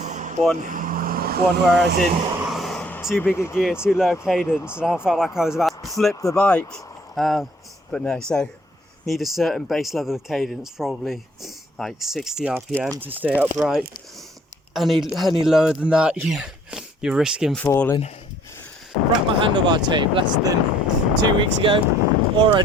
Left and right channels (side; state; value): both; normal; correlation 0.61